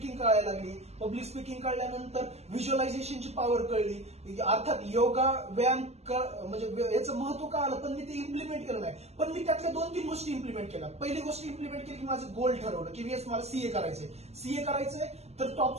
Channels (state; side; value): late; left; 0.31 ms